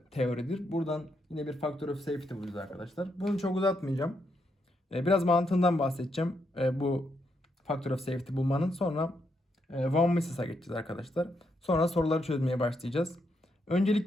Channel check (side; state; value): both; normal; correlation 0.80